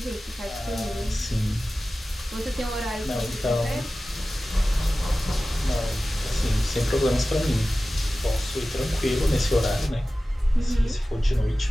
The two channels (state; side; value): normal; both; correlation 0.96